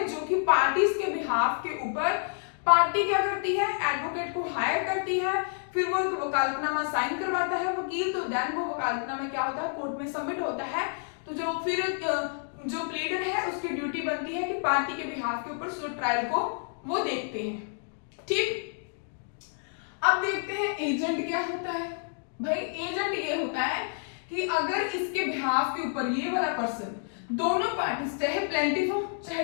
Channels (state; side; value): silent; right; 59 dB below the other